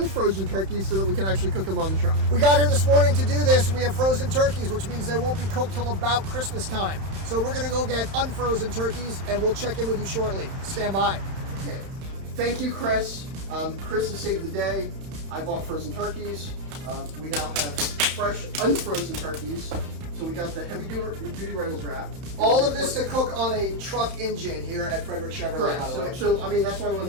turkeys so that we can actually cook them on the truck. We got here this morning to do this. We have frozen turkeys, which means they won't be cooked till about Christmas time. So we're going to go get unfrozen turkeys, and we'll check in with you shortly. Stand by. Okay. Thank you, Chris. Chris has saved the day. I bought frozen turkeys. We now have fresh unfrozen turkeys. So we got the heavy-duty Reynolds wrap. All of this to cook on a truck engine here at Frederick Chevrolet, Correct. by the way. So I mean, that's why I went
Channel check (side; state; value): left; late; 31 ms